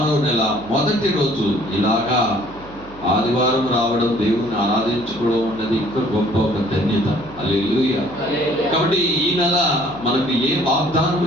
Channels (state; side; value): noise; right; hum, 20 dB below the sound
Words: నెల మొదటి రోజు ఇలాగా ఆదివారం రావడం, దేవుని ఆరాధించుకోవడం ఉన్నది ఇంకా గొప్ప ఒక ధన్యత. హల్లెలూయా. కాబట్టి ఈ నెల మనకు ఏ వాగ్దానం